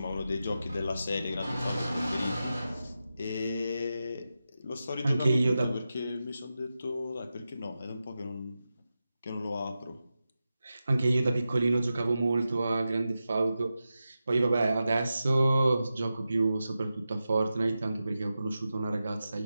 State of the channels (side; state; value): both; inverted; correlation -0.91